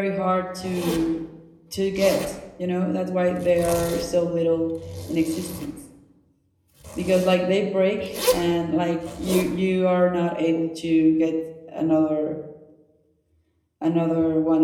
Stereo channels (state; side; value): identical; both; correlation 1.00